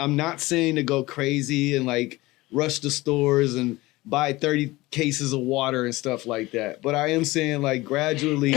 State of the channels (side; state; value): right; quieter; 20.0 dB